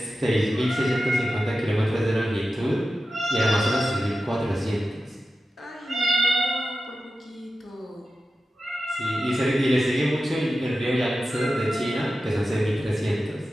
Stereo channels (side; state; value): both; normal; correlation 0.92